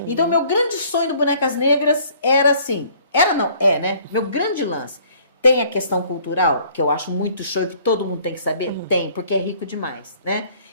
Então, meu grande sonho do Bonecas Negras era assim, né? Meu grande lance. Tem a questão cultural, que eu acho muito show e que todo mundo tem que saber? Tem, porque é rico demais, né?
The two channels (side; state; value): both; inverted; correlation -0.57